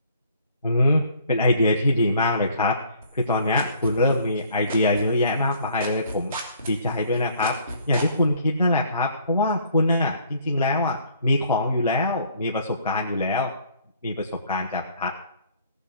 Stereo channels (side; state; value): both; inverted; correlation -0.59